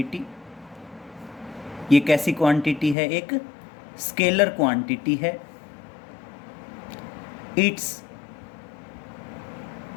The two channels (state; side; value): drops out; right; at 3.0 s